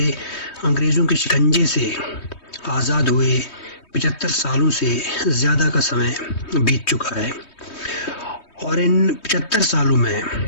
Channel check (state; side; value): late; right; 3.2 ms